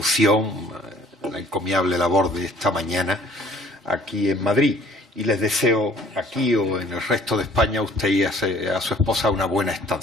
la encomiable labor de esta mañana aquí en Madrid. Y les deseo aquí o en el resto de España a usted y a su esposa una buena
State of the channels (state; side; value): normal; both; correlation 0.55